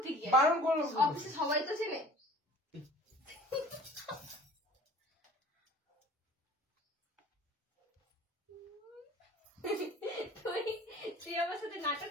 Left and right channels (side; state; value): both; normal; correlation 0.46